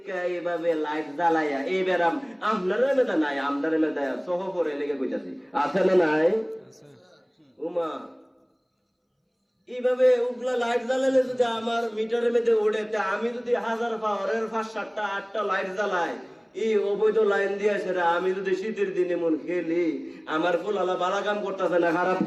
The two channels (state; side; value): identical; both; correlation 1.00